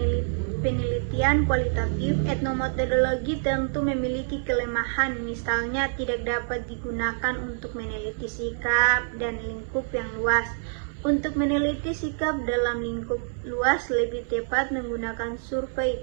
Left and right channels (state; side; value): silent; left; digital silence